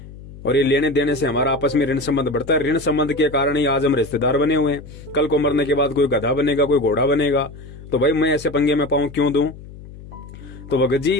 और ये लेने देने से हमारा आपस में ऋण संबंध बढ़ता है। ऋण संबंध के कारण ही आज हम रिश्तेदार बने हुए हैं। कल को मरने के बाद कोई गधा बनेगा, कोई घोड़ा बनेगा, तो भाई मैं ऐसे पंगे में पाऊं क्यों दूं? तो भगत जी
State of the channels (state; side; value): noise; left; hum, 16 dB below the sound